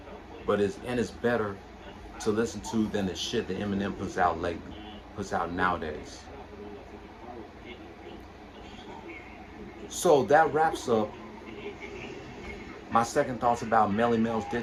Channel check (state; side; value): identical; both; correlation 1.00